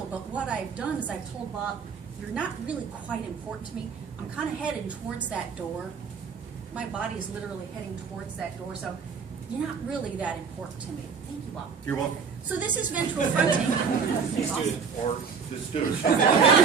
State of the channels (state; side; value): quieter; left; 5.9 dB